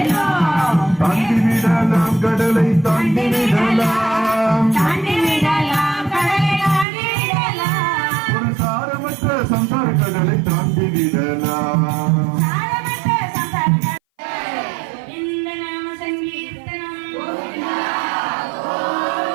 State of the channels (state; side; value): drops out; left; at 6.9 s